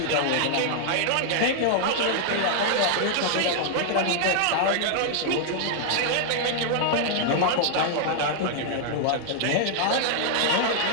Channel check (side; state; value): both; different; correlation -0.01